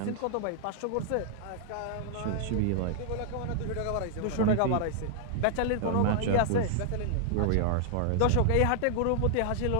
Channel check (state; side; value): different; both; correlation -0.01